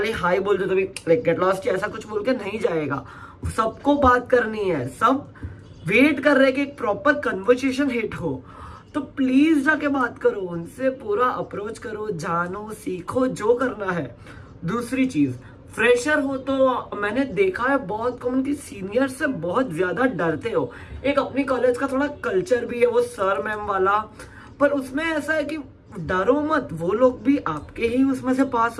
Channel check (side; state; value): both; identical; correlation 1.00